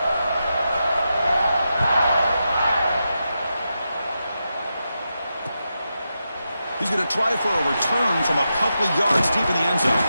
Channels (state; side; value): inverted; both; correlation -0.88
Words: He's going to try for a return from a couple of yards deep in the end zone.